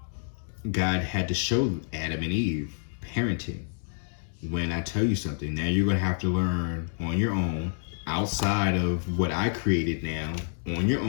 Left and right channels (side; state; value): right; silent; digital silence